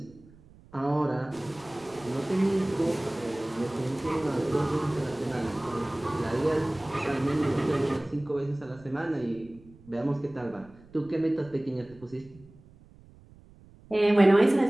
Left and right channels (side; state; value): right; noise; rumble, 24 dB below the sound